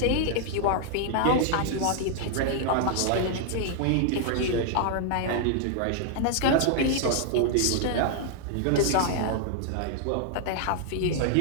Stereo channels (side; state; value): both; different; correlation -0.01